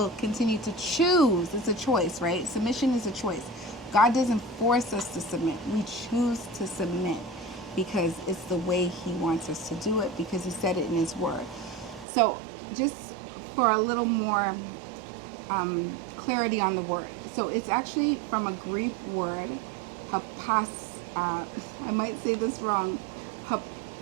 continue to choose. It's a choice, right? Submission is a choice. God doesn't force us to submit. We choose to submit because it's the way He wants us to do it, because He said it in His Word. So just for a little more clarity on the word. So it's actually from a Greek word, I might say this wrong,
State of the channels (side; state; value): left; drops out; at 12.1 s